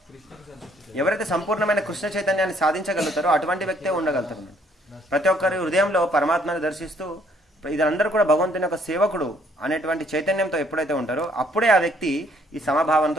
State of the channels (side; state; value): both; normal; correlation 0.65